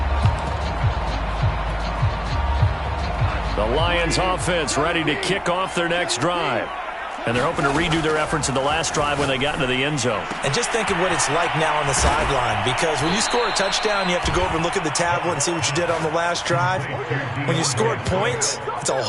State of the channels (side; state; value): both; identical; correlation 1.00